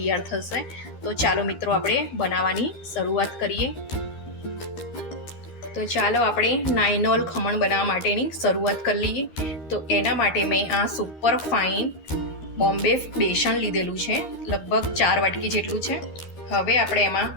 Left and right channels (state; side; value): late; right; 13 ms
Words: થશે. તો ચાલો મિત્રો, આપણે બનાવવાની શરૂઆત કરીએ. તો ચાલો આપણે નાયનોલ ખમણ બનાવવા માટેની શરૂઆત કરી લઈએ. તો એના માટે મેં આ સુપર ફાઇન બોમ્બે બેસન લીધેલું છે, લગભગ 4 વાટકી જેટલું છે. હવે આપણે એમાં